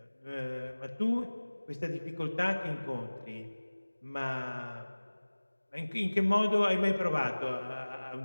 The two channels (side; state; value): both; inverted; correlation -1.00